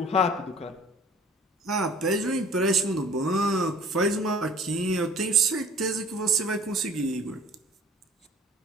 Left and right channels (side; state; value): both; normal; correlation 0.50